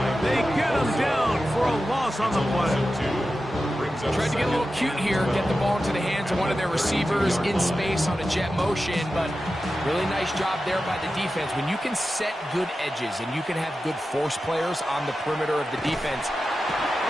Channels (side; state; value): both; normal; correlation 0.92